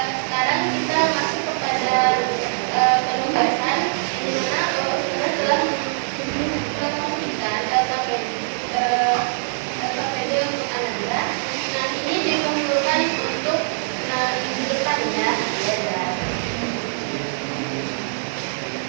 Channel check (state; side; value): silent; left; digital silence